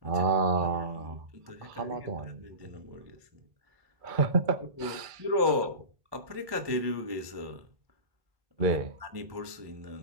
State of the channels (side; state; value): left; late; 1.2 ms